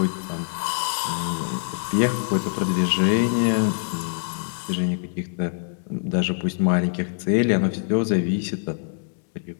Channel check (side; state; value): right; silent; digital silence